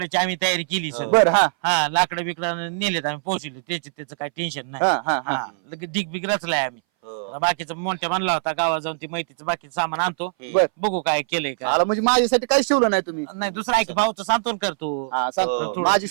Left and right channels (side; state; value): left; silent; 61 dB below the other